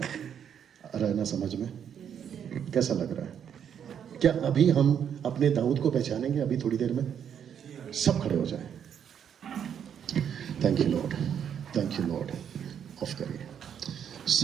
आ रहा है ना समझ में? कैसा लग रहा है? क्या अभी हम अपने दाऊद को पहचानेंगे? अभी थोड़ी देर में सब खड़े हो जाए। Thank you Lord, thank you Lord. Of करिए,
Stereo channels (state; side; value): quieter; left; 8.5 dB